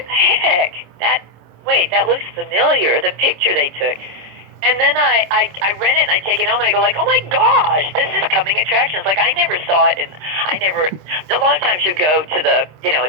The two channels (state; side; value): late; left; 26 ms